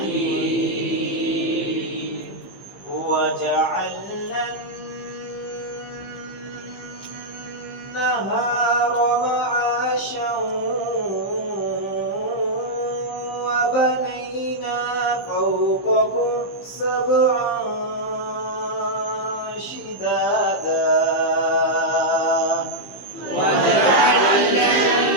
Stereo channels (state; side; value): late; right; 15 ms